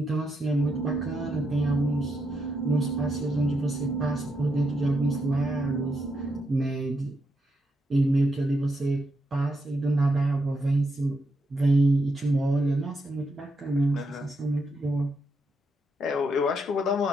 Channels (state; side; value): normal; both; correlation 0.81